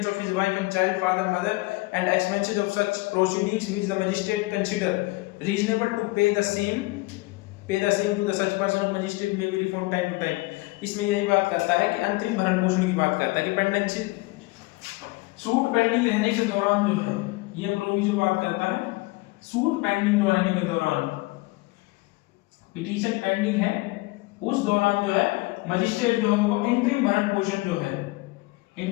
of his wife and child, father, mother, and expenses of such proceedings which the magistrate consider reasonable to pay the same to the such person of magistrate may be reformed time to time। इसमें यही बात करता है कि अंतरिम भरण पोषण की बात करता है कि पेंडेंसी सूट पेंडिंग रहने के दौरान जो है, ये प्रोविजन बात करता है सूट पेंडिंग जो रहने के दौरान, पिटीशन पेंडिंग है उस दौरान जो है मजिस्ट्रेट जो है वो इंटरिम भरण पोषण जो है,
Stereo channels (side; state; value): right; quieter; 22.8 dB